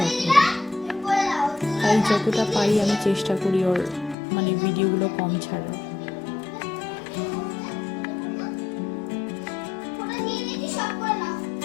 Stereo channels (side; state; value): right; drops out; at 4.2 s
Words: করে। তাই যতটা পারি আমি চেষ্টা করি ওর মানে ভিডিওগুলো কম ছাড়ার।